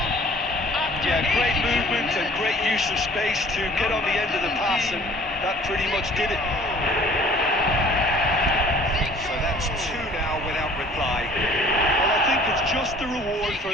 yeah, great movement and great use of space to get on the end of the pass, and that pretty much did it. So that's two now without reply. Well, I think it's just the reward for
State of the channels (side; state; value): both; normal; correlation 0.52